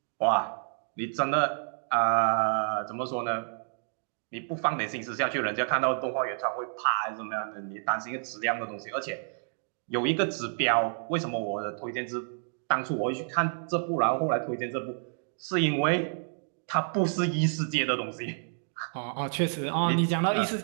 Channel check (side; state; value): left; silent; digital silence